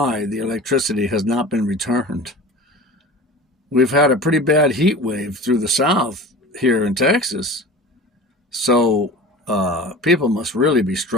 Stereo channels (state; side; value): normal; both; correlation 0.36